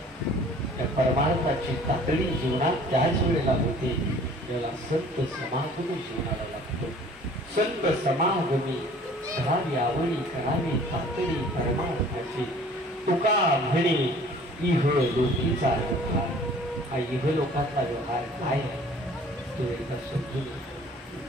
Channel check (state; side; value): normal; both; correlation 0.51